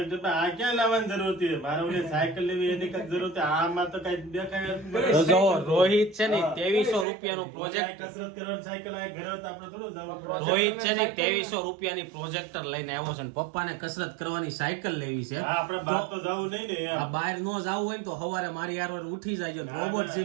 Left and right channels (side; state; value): left; drops out; at 7.1 s